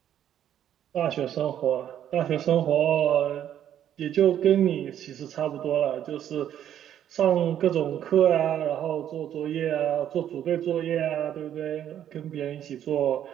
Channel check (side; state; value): left; quieter; 10.5 dB